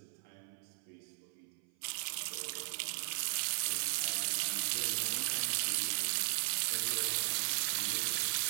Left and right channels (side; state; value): left; silent; 53 dB below the other